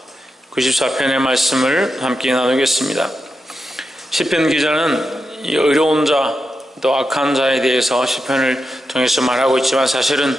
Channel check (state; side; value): normal; both; correlation 0.87